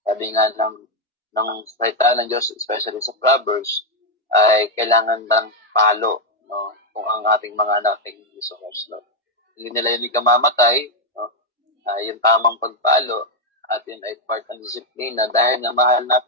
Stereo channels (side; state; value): both; normal; correlation 0.02